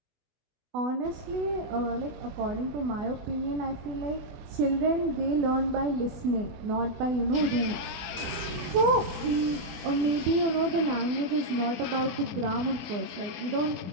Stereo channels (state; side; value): late; left; 24 ms